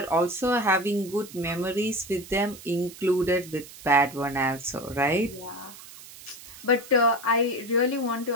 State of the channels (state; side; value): noise; right; hiss, 17 dB below the sound